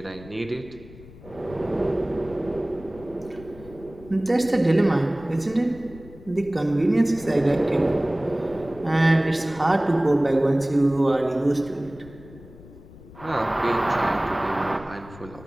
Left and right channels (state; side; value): noise; left; rumble, 19 dB below the sound